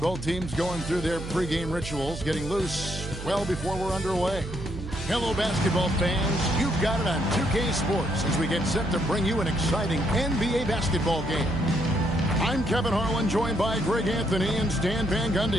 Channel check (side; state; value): right; noise; hum, 9 dB below the sound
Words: teams going through their pregame rituals, getting loose well before we're underway. Hello, basketball fans. You've got it on 2K Sports as we get set to bring you an exciting NBA basketball game. I'm Kevin Harlan, joined by Greg Anthony and Stan Van